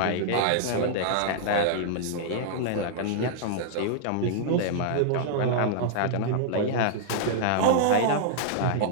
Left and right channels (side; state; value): both; different; correlation -0.01